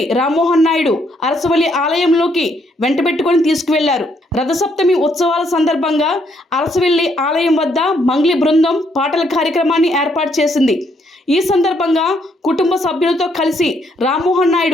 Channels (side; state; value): both; normal; correlation 0.72